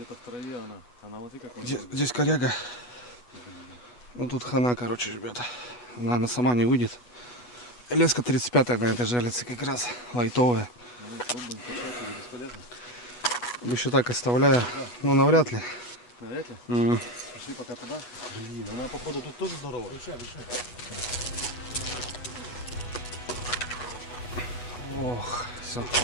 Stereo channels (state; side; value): late; right; 8.2 ms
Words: в траве она. Она вот и как. Здесь коряга. Ну тут хана, короче, ребята. Она сама не выйдет. Леска 35-я на этой жалится как раз. Лайтовая. Ну, пробуем качать, или бесполезно. Еще так оставляю. Ну, навряд ли. Навряд ли? Пошли пока туда. Блин, она походу тут тоже здоровая. Ох, все.